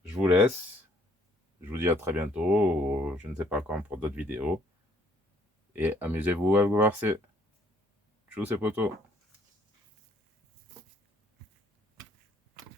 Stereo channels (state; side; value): normal; both; correlation 0.63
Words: je vous laisse. Je vous dis à très bientôt, ou je ne sais pas quand, pour d'autres vidéos. Et amusez-vous à vous voir. Tchuss, c'est poteau.